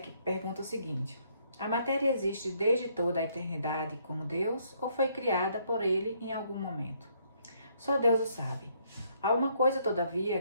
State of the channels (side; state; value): both; inverted; correlation -0.69